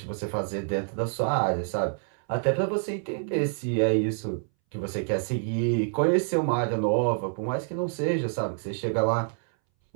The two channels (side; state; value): left; silent; 60 dB below the other